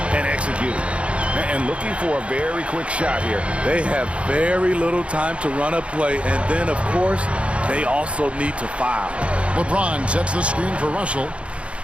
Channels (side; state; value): left; late; 0.060 ms